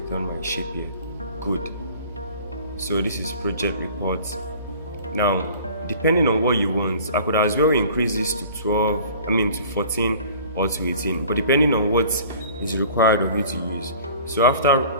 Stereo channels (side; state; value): both; inverted; correlation -0.47